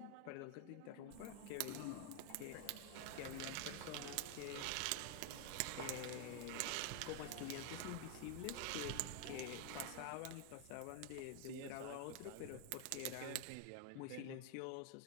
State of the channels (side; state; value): both; different; correlation 0.00